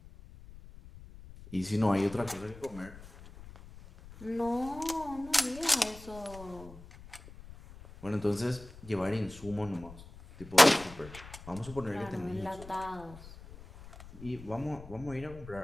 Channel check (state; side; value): noise; left; rumble, 17 dB below the sound